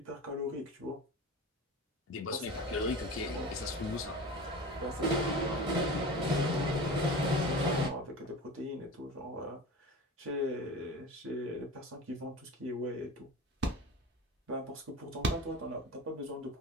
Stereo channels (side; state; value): both; normal; correlation 0.33